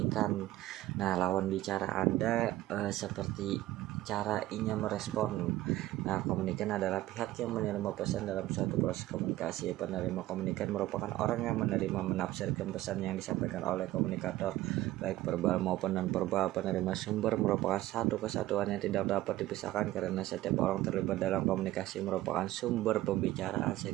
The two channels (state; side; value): quieter; left; 15.9 dB